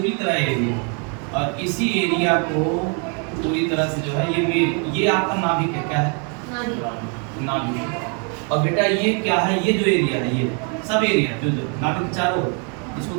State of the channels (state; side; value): quieter; left; 38.1 dB